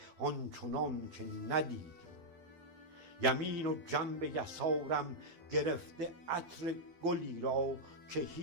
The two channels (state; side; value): late; left; 12 ms